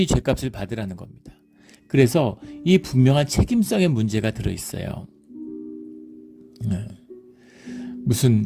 죄값을 받으라는 겁니다. 그래서 이 분명한 책임성의 문제가 들어있어요.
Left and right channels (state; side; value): identical; both; correlation 1.00